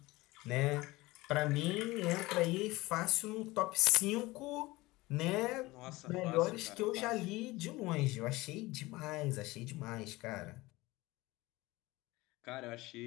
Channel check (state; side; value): quieter; right; 20.5 dB